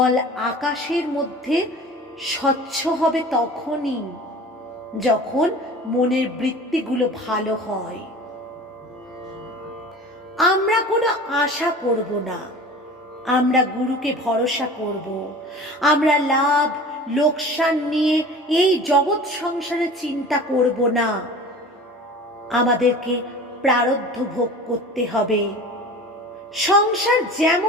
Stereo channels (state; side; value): normal; both; correlation 0.39